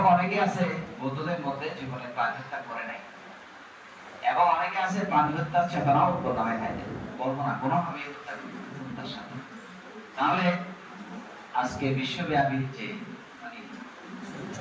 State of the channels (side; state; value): both; identical; correlation 1.00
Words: অনেকে আছে বৌদ্ধদের মধ্যে জীবনে প্রাণী হত্যা করে নাই, এবং অনেকে আছে প্রাণী হত্যার চেতনাও প্রদানে খাইতে বলবো না কোনোভাবে হত্যার সাথে। তাহলে আজকে বিশ্বব্যাপী যে মানে